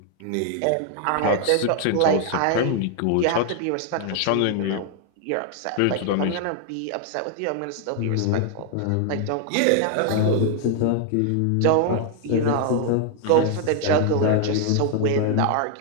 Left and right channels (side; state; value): both; different; correlation 0.00